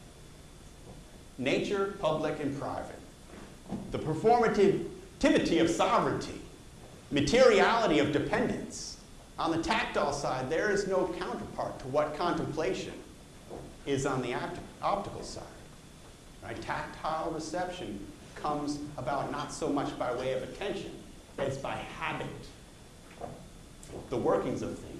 Nature, public, and private. The performativity of sovereignty. Materiality of dependence. On the tactile side, there is no counterpart to what contemplation is on the optical side. Right? Tactile reception comes about not so much by way of attention as by habit, the workings of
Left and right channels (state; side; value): identical; both; correlation 1.00